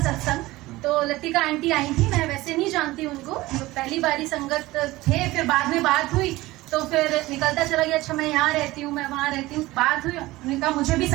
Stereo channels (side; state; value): left; quieter; 18.8 dB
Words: सत्संग, तो लतिका आंटी आई थी, मैं वैसे नहीं जानती उनको, तो पहली बारी संगत थे, फिर बाद में बात हुई तो फिर निकलता चला गया, अच्छा मैं यहाँ रहती हूँ, मैं वहाँ रहती हूँ, बात हुई, उन्होंने कहा मुझे भी